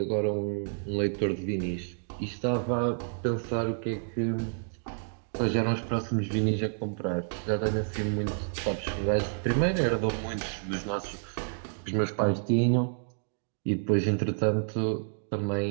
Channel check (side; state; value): left; silent; digital silence